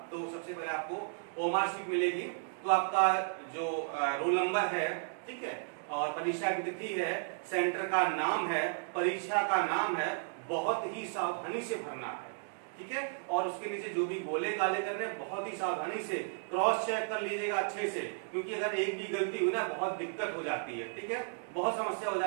तो सबसे पहले आपको ओएमआर शीट मिलेगी, तो आपका जो रोल नंबर है, ठीक है, और परीक्षा की तिथि है, सेंटर का नाम है, परीक्षा का नाम है, बहुत ही सावधानी से भरना है। ठीक है, और उसके नीचे जो भी गोले काले करने बहुत ही सावधानी से क्रॉस चेक कर लीजिएगा अच्छे से, क्योंकि अगर एक भी गलती हुई ना बहुत दिक्कत हो जाती है। ठीक है, बहुत समस्या हो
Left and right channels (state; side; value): silent; left; digital silence